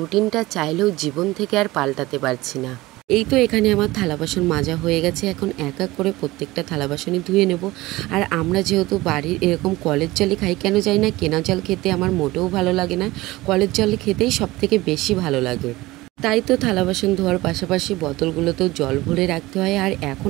চাইলেও জীবন থেকে আর পাল্টাতে পারছি না। এই তো এখানে আমার থালা বাসন মাজা হয়ে গেছে, এখন এক এক করে প্রত্যেকটা থালা বাসনই ধুয়ে নেব। আর আমরা যেহেতু বাড়ির এরকম কলের জলই খাই, কেন জানি না কেনা জল খেতে আমার মোটেও ভালো লাগে না, কলের জল খেতেই সব থেকে বেশি ভালো লাগে। তাই তো থালা বাসন ধোয়ার পাশাপাশি বোতলগুলোতেও জল ভরে রাখতে হয়। আর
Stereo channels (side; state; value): left; quieter; 19.3 dB